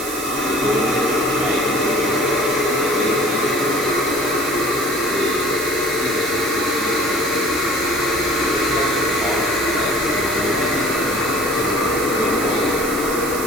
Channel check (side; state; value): right; noise; hiss, 7 dB below the sound